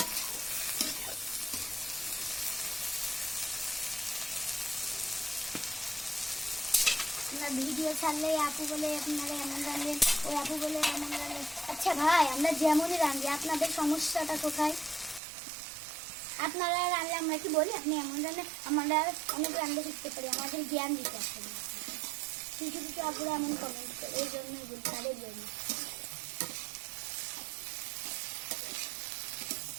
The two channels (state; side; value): drops out; left; at 15.2 s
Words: ভিডিও ছাড়লে আপু বলে আপনারা এমন রাঁধেন, ওই আপু বলে এমন রাঁধেন। আচ্ছা ভাই, আমরা যেমনই রাঁধি, আপনাদের সমস্যাটা কোথায়? আপনারা রাঁধলে আমরা কি বলি আপনি এমন রাঁধে? আমরা অনেক রাঁধতে শিখতে পারি, আমাদের জ্ঞান দিতে আসলে। কিছু কিছু আপুরা এমন কমেন্ট করে, এই জন্যই বলি, তাদের জন্য।